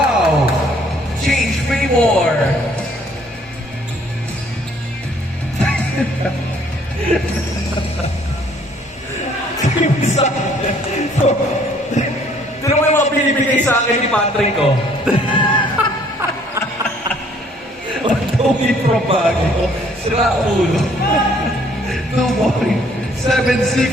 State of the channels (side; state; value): both; normal; correlation 0.61